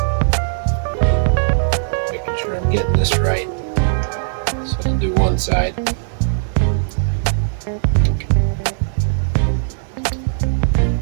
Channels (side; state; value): left; silent; 66 dB below the other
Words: Making sure I'm getting this right. So I'll do one side.